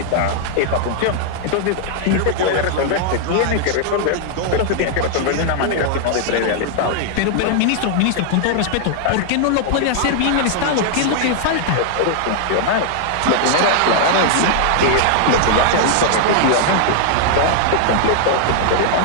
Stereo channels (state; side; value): different; both; correlation -0.01